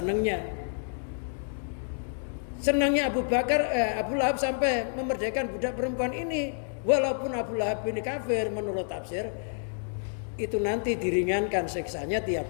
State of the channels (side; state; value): right; silent; digital silence